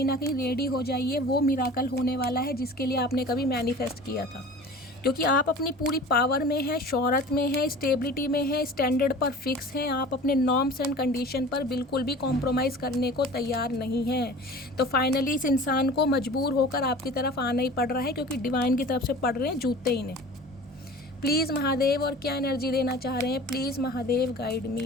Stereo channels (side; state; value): both; normal; correlation 0.41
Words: ना कहीं रेडी हो जाइए, वो मिराकल होने वाला है जिसके लिए आपने कभी मैनिफेस्ट किया था, क्योंकि आप अपनी पूरी पावर में हैं, शोहरत में हैं, स्टेबिलिटी में हैं, स्टैंडर्ड पर फिक्स हैं, आप अपने नॉर्म्स एंड कंडीशन पर बिल्कुल भी कॉम्प्रोमाइज़ करने को तैयार नहीं हैं। तो फाइनली इस इंसान को मजबूर होकर आपकी तरफ आना ही पड़ रहा है, क्योंकि डिवाइन की तरफ से पड़ रहे हैं जूते इन्हें। प्लीज़ महादेव, और क्या एनर्जी देना चाह रहे हैं, please Mahadev guide